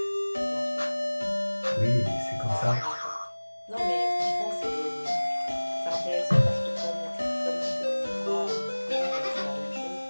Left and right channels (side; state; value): both; inverted; correlation -1.00